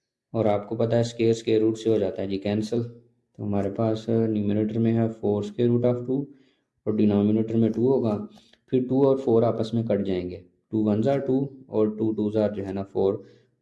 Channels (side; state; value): both; identical; correlation 1.00